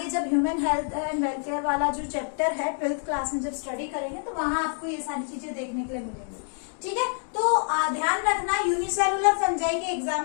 जब ह्यूमन हेल्थ एंड वेलफेयर वाला जो चैप्टर है 12th क्लास में जब स्टडी करेंगे तो वहां आपको ये सारी चीजें देखने के लिए मिलेंगी. ठीक है, तो ध्यान रखना, यूनिसेलुलर फंजाई के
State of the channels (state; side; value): silent; right; 60 dB below the other